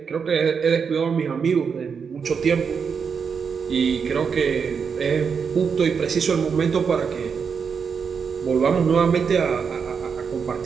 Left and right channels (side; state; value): left; quieter; 6.2 dB